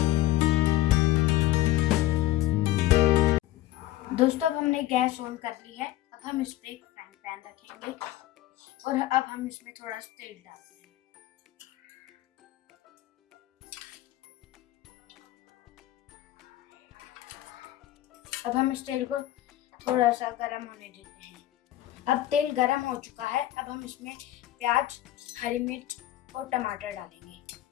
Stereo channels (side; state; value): right; quieter; 15.0 dB